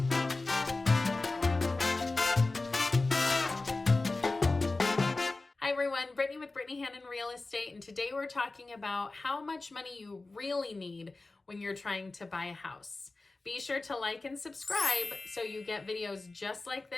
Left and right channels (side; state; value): right; quieter; 3.3 dB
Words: Hi everyone, Brittany with Brittany Hannon Real Estate, and today we're talking about how much money you really need when you're trying to buy a house. Be sure to like and subscribe so you get videos just like